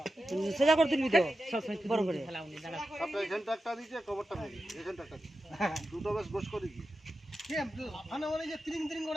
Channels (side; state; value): both; normal; correlation 0.91